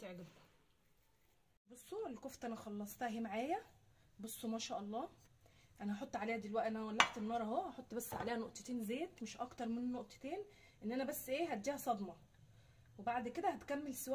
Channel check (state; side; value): identical; both; correlation 1.00